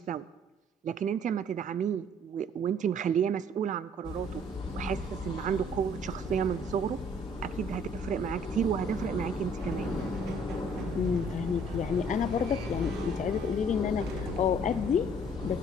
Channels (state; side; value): normal; both; correlation 0.58